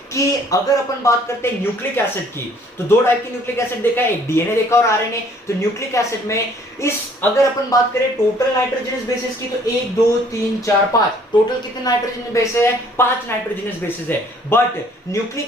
कि अगर अपन बात करते हैं न्यूक्लिक एसिड की, तो दो टाइप की न्यूक्लिक एसिड देखा है, एक डीएनए देखा और आरएनए। तो न्यूक्लिक एसिड में अगर अपन बात करें टोटल नाइट्रोजनस बेसिस की, तो 1 2 3 4 5 टोटल कितने नाइट्रोजनस बेसिस है, 5 नाइट्रोजनस बेसिस है। बट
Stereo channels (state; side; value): normal; both; correlation 0.58